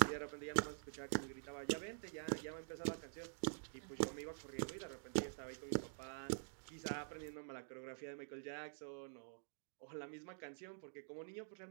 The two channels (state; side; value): silent; left; digital silence